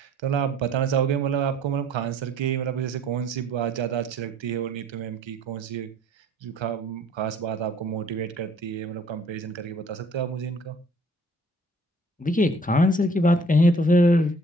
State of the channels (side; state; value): both; normal; correlation 0.56